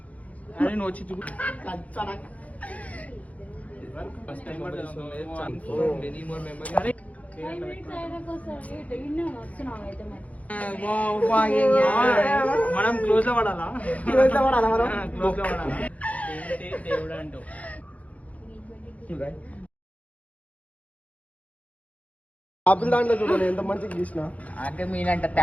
మనం క్లోజ్ లో పడాలా దేవుడు అంటావు ఆపిల్ దాంట్లో చూడండి ఎంత మంచిగా గీసిన. అంటే మీనంత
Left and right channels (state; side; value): late; right; 0.069 ms